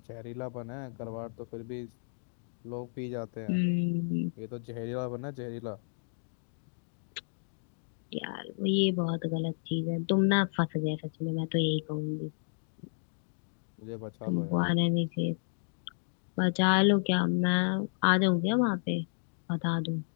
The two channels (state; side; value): silent; right; digital silence